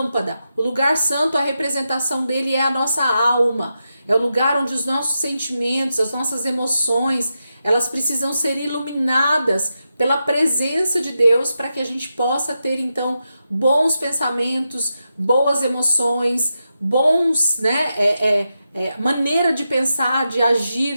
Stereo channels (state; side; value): inverted; both; correlation -0.88